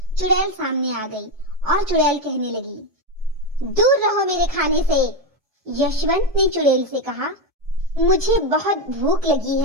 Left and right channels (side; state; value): left; late; 4.7 ms